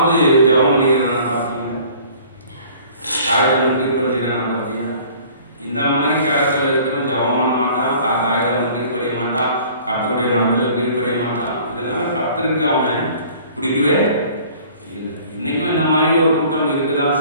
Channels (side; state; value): both; inverted; correlation -0.51